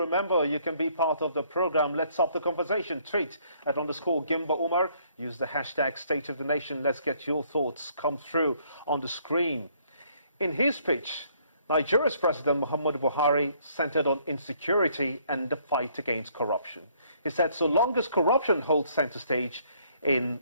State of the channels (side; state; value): both; inverted; correlation -0.65